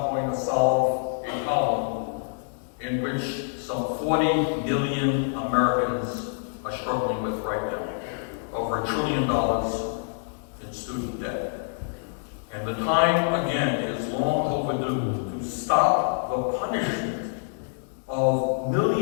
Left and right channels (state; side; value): silent; right; digital silence